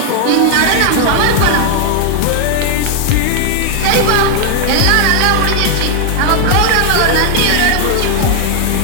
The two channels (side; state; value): both; different; correlation 0.00